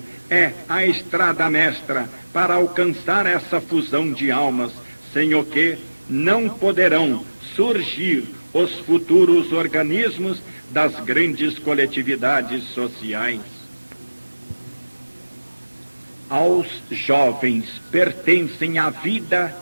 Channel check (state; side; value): inverted; both; correlation -1.00